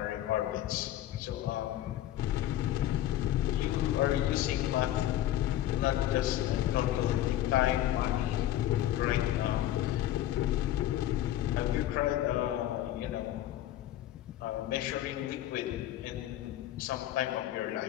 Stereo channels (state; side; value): quieter; right; 13.2 dB